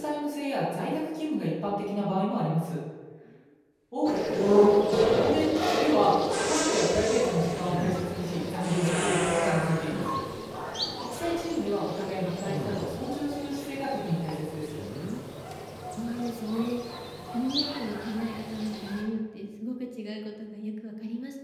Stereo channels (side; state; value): both; identical; correlation 1.00